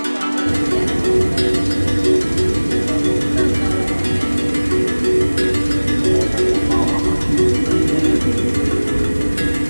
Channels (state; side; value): inverted; both; correlation -1.00